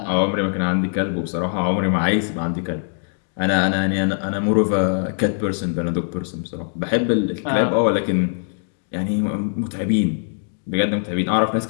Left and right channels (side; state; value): right; silent; digital silence